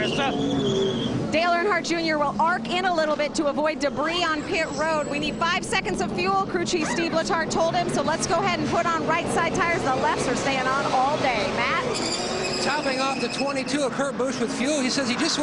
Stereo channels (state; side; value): identical; both; correlation 1.00